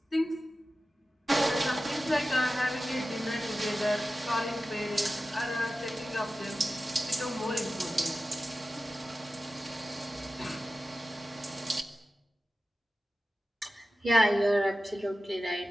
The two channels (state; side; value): normal; both; correlation 0.94